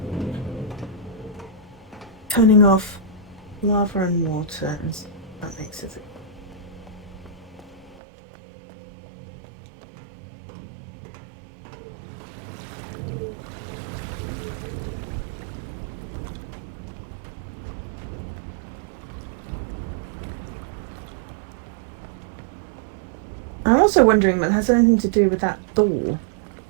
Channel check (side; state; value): left; drops out; at 8.0 s